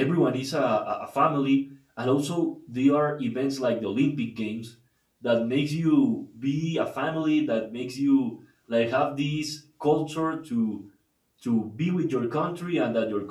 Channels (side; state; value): both; identical; correlation 1.00